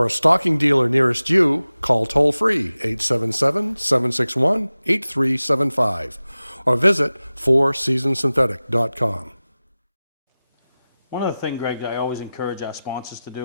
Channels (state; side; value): inverted; both; correlation -0.96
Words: a stocking dealer nearest you, call toll-free 877-761-8375 or visit fourseasonsynthetic.com. One other thing, Greg, that I always encourage our sponsors to do,